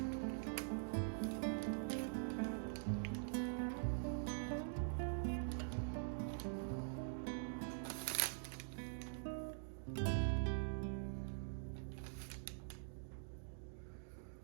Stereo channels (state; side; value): silent; left; digital silence